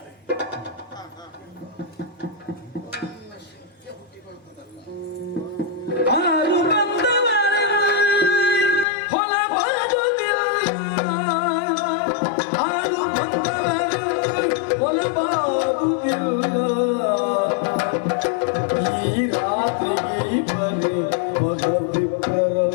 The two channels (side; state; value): right; drops out; at 8.8 s